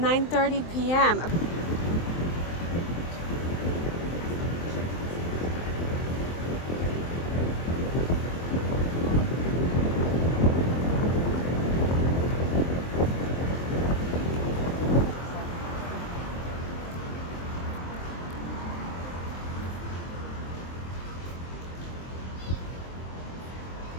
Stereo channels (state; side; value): late; right; 23 ms